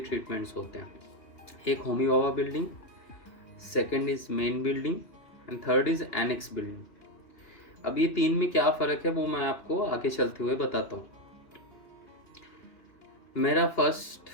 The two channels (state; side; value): late; right; 2.8 ms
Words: होते हैं। एक Homi Bhabha building, second is main building and third is annex building. अब ये 3 में क्या फ़र्क है वो मैं आपको आगे चलते हुए बताता हूँ। मेरा फर्स्ट